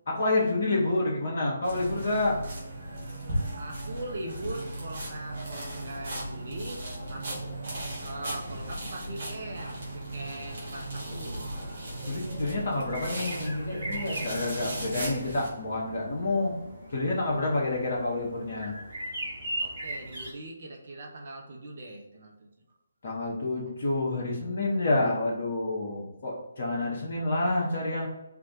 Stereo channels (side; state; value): both; inverted; correlation -0.78